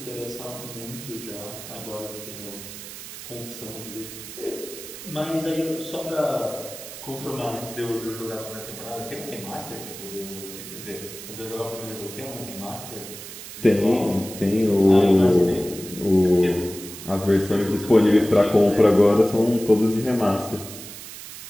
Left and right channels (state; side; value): noise; right; hiss, 12 dB below the sound